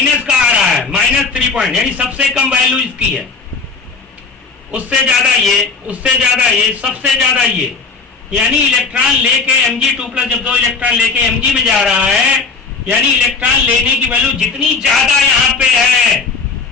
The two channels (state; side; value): quieter; right; 4.5 dB